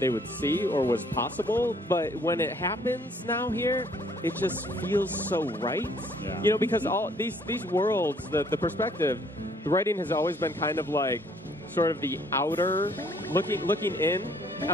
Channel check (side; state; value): both; normal; correlation 0.62